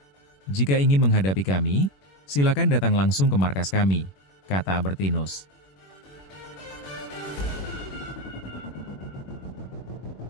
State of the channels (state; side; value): late; right; 21 ms